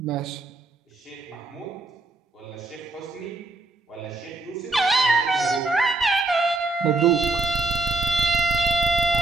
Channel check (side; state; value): left; quieter; 3.0 dB